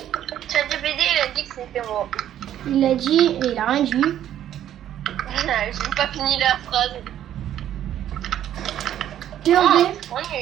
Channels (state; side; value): quieter; left; 11.2 dB